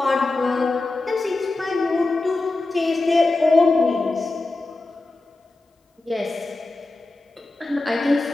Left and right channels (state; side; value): quieter; right; 3.1 dB